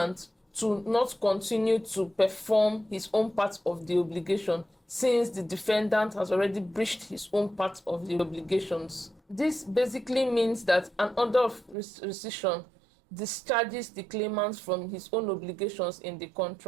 to not continue to perform his own part of the obligation, since the defendant has already breached his own part of the obligations. This basically means that an order of rescission discharges the claimant from his own obligations in the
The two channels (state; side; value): drops out; left; at 11.8 s